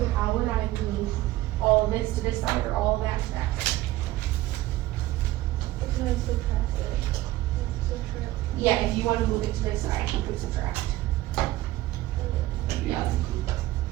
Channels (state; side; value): quieter; left; 16.3 dB